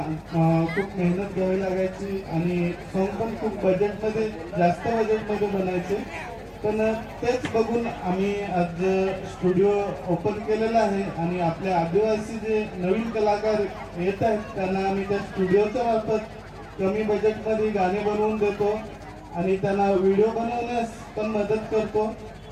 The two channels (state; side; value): identical; both; correlation 1.00